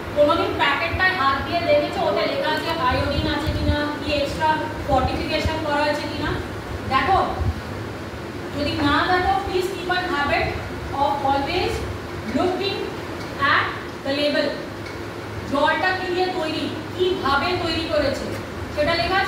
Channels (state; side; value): identical; both; correlation 1.00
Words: কোনোদিন প্যাকেটটায় হাত দিয়ে দেখেছো ওতে লেখা আছে আয়োডিন আছে কিনা, কি এক্সট্রা ফর্টিফিকেশন করা আছে কিনা? দেখো, যদি না দেখো please keep an habit of always looking at the label. জলটা কি দিয়ে তৈরি, কিভাবে তৈরি করেছে সেটা লেখা